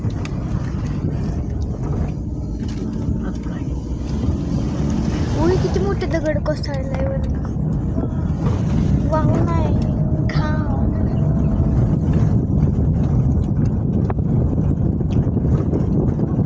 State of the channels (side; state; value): both; identical; correlation 1.00